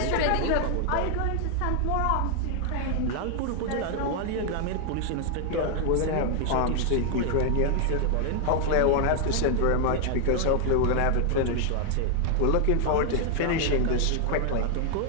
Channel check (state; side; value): different; both; correlation 0.00